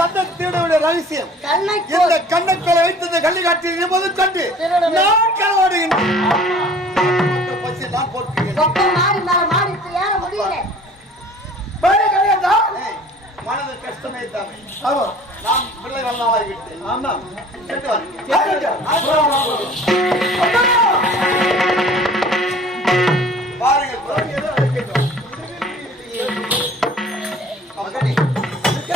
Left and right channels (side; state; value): both; normal; correlation 0.49